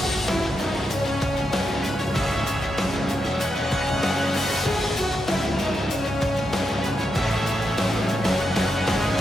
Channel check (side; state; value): both; normal; correlation 0.84